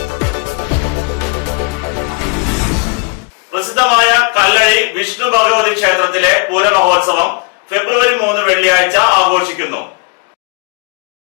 പ്രസിദ്ധമായ കല്ലഴി വിഷ്ണു ഭഗവതി ക്ഷേത്രത്തിലെ പൂരമഹോത്സവം ഫെബ്രുവരി 3 വെള്ളിയാഴ്ച ആഘോഷിക്കുന്നു.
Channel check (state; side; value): quieter; right; 31.4 dB